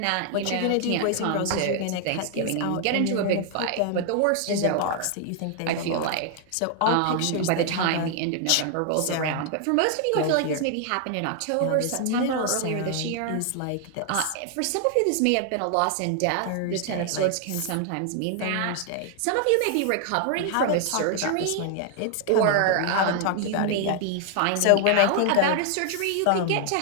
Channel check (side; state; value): both; different; correlation 0.00